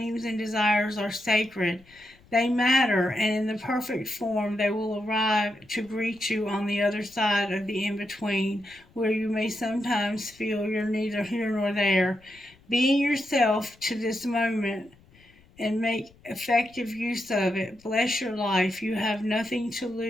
and desires are sacred. They matter, and in the perfect form they will arrive to greet you on the other side of the in-between, where you may sometimes feel you're neither here nor there. Being yourself to this moment and make effective use of it. Bless your life. You have nothing to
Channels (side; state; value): left; noise; rumble, 28 dB below the sound